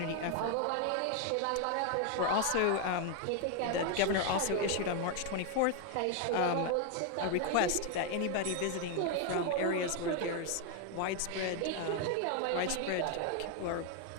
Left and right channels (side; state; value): both; different; correlation 0.01